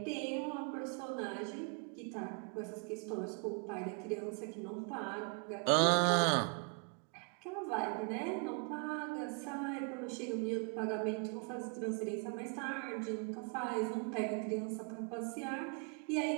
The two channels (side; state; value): left; quieter; 38.9 dB